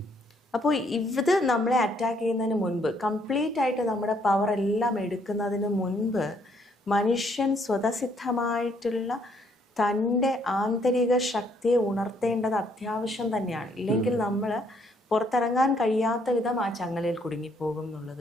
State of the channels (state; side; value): normal; both; correlation 0.68